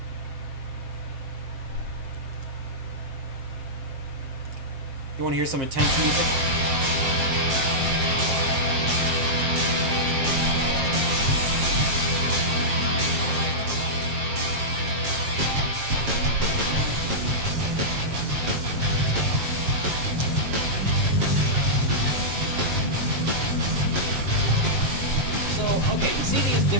You want to hear some intense music? Okay, you see these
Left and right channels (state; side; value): late; left; 7.5 ms